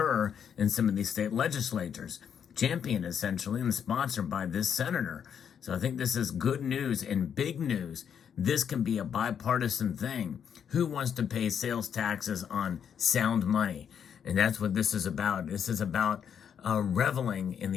in some of these state legislatures, championed essentially and sponsored by this senator. So I think this is good news and big news. This can be a bipartisan thing. Who wants to pay sales taxes on sound money? And that's what this is about. This is about reveling in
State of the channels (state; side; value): quieter; right; 8.0 dB